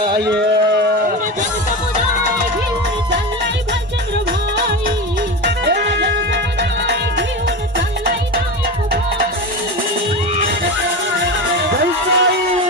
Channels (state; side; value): normal; both; correlation 0.23